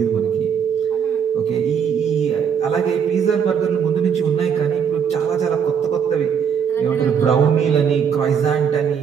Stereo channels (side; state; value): left; quieter; 7.4 dB